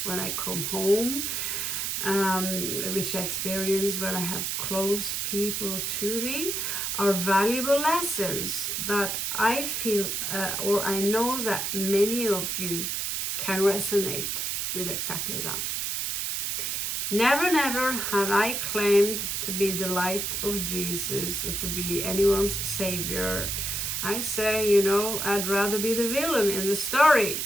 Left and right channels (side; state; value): right; noise; hiss, 1 dB below the sound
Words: when I come home, which I experience when I have close people to me, are valuable lessons that I feel or I know that many of you can resonate with exactly that. Never, never have I claimed to be the light of Jesus or to be anyone's savior. I say, you know, I'd rather be the villain in the story.